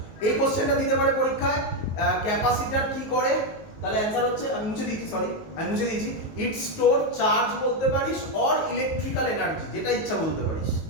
এই কোশ্চেনটা দিতে পারে পরীক্ষায়, ক্যাপাসিটর কি করে? তাহলে অ্যানসার হচ্ছে, আমি মুছে দিয়েছি, ইট স্টোর চার্জ বলতে পারিস অর ইলেকট্রিক্যাল এনার্জি, যেটা ইচ্ছা বলতে পারিস,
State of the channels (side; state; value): right; late; 19 ms